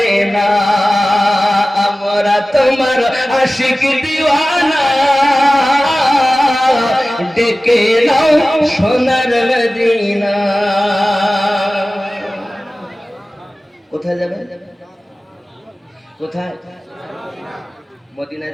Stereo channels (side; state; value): both; normal; correlation 0.96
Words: না। আমরা তোমার আশিক দিওয়ানা, ডেকে নাও সোনার মদিনা। কোথায় যাবে? কোথায়? মদিনায়